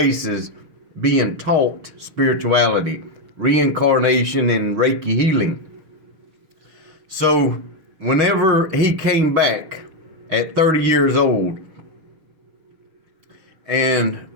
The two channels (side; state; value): left; late; 6.5 ms